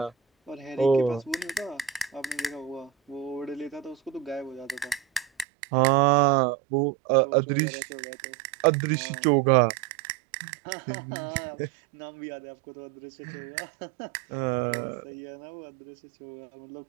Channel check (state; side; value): drops out; left; at 5.5 s